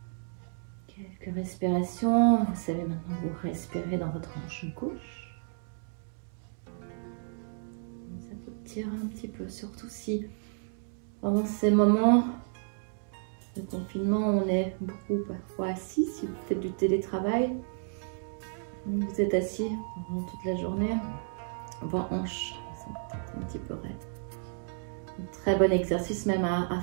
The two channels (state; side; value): silent; left; digital silence